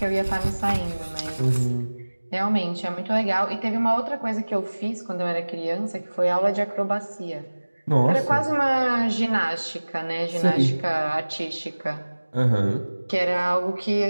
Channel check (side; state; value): both; inverted; correlation -1.00